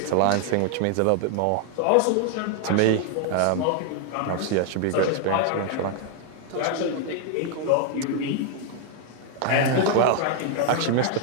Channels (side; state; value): both; different; correlation 0.00